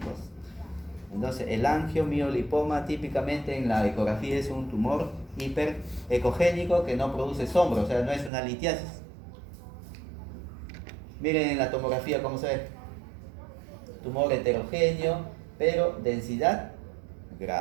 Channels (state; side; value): drops out; left; at 8.3 s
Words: Entonces, el angiomiolipoma típicamente en la ecografía es un tumor hiperecogénico que no produce sombra, o sea, no es una litiasis. Miren en la tomografía cómo se ve. Tumor heterogéneo, pero densidad